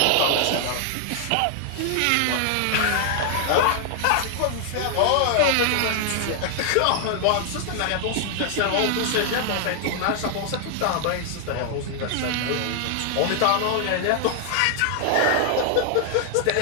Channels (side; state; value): both; different; correlation 0.00